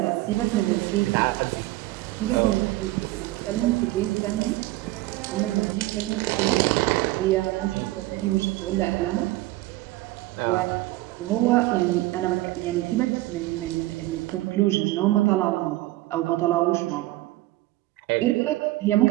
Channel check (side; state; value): left; quieter; 18.1 dB